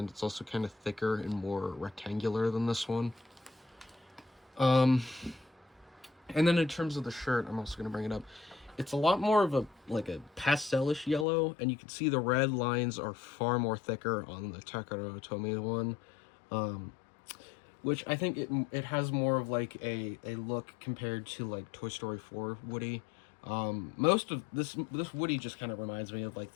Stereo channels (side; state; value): right; drops out; at 11.2 s